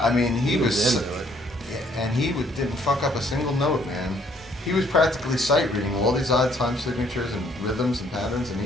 mean, he was. Into it. Yeah, and he didn't fuck up a single note, man. He was practically sight reading all these odd time signatures and rhythms and patterns, and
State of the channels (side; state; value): both; normal; correlation 0.64